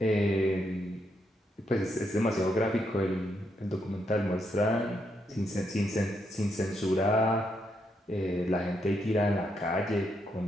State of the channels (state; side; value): normal; both; correlation 0.79